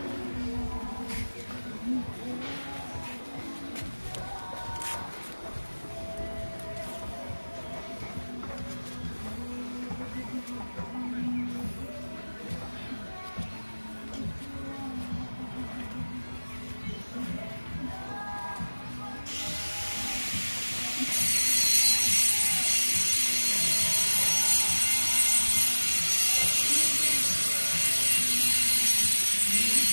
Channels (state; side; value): inverted; both; correlation -1.00